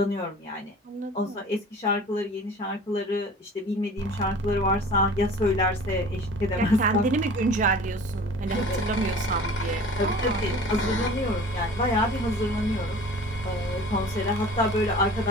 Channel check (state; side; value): normal; both; correlation 0.43